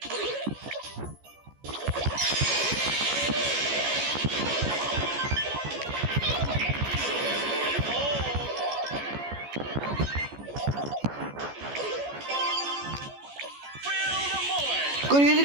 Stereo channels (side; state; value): left; late; 14 ms